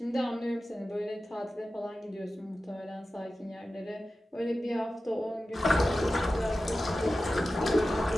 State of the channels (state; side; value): normal; both; correlation 0.94